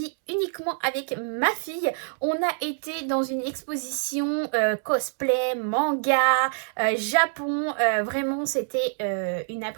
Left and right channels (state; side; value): silent; left; 61 dB below the other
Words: uniquement avec ma fille. On a été dans une exposition cosplay, manga, Japon, vraiment c'était une